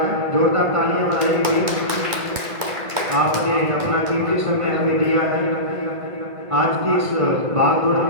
जोरदार तालियां बजाएंगे। आपने अपना कीमती समय हमें दिया है। आज की इस भागदौड़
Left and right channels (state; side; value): late; left; 2.3 ms